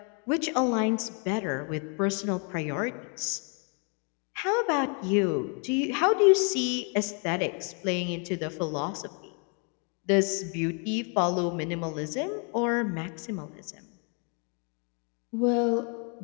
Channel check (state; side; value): quieter; right; 37.8 dB